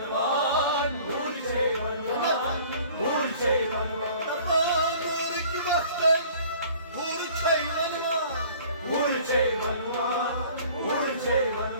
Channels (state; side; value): inverted; both; correlation -0.50